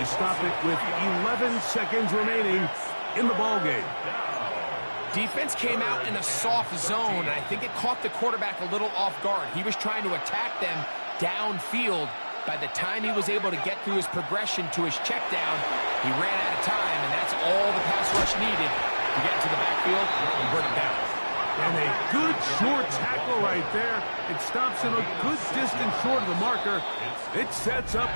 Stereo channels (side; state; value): both; inverted; correlation -1.00